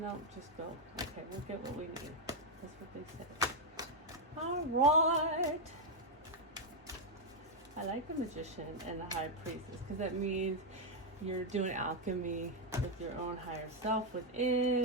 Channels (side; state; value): both; normal; correlation 0.01